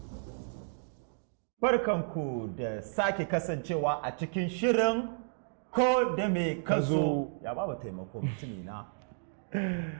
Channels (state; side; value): silent; left; digital silence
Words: Barkanku da sake kasancewa a cikin shirin Ko Dame Kazo. Ya ba taimako mutumi na.